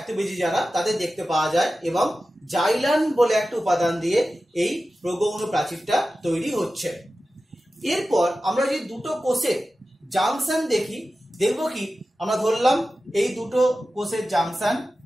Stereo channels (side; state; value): both; normal; correlation 0.94